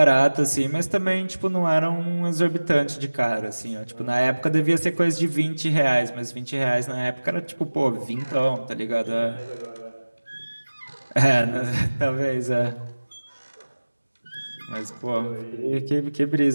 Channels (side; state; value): both; inverted; correlation -1.00